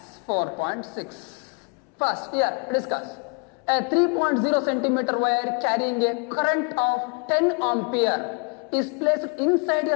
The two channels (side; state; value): right; quieter; 35.3 dB